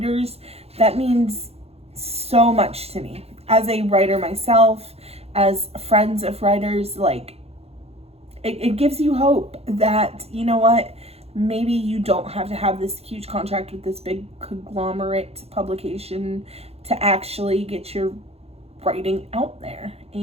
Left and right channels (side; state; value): left; late; 0.29 ms